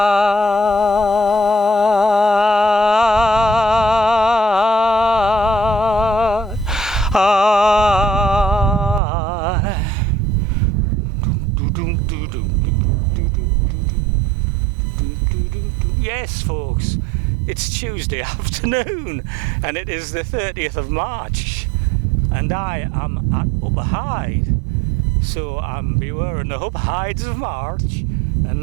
Yes, folks, it's Tuesday afternoon and it is the 30th of March and I am at Upper Hyde. So I'm beware the Upper Hydes of March,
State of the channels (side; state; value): left; drops out; at 9.0 s